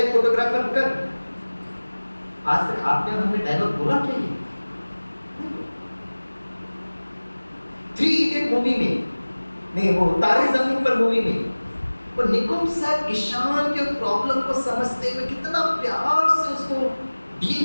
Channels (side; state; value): both; inverted; correlation -1.00